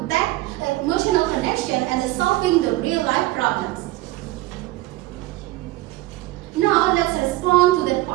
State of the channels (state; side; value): quieter; left; 18.2 dB